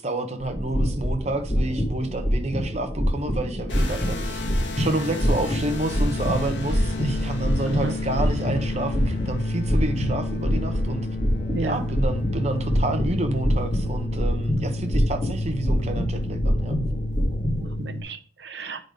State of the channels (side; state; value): both; normal; correlation 0.80